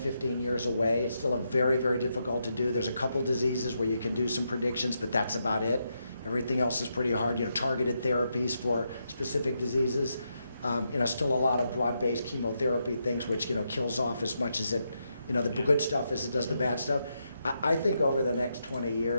years away. It's still a very, very difficult to do. There's a couple diseases where you can do some predictions, but that's about it. Everything else is pretty hard. You know, targeted therapies for specific diseases. You know, still a lot of broad-based chemotherapy things, which, you know, kills off as much as it, you know, the good stuff as it does the bad stuff. I think over the next 20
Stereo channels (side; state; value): both; inverted; correlation -0.82